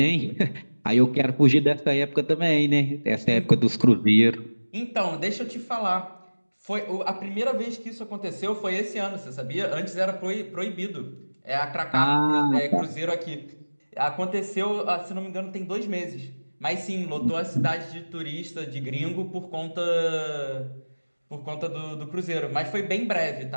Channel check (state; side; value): inverted; both; correlation -1.00